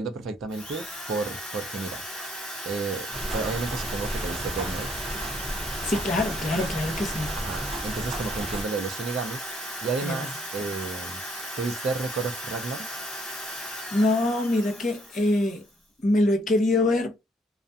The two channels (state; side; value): normal; both; correlation 0.67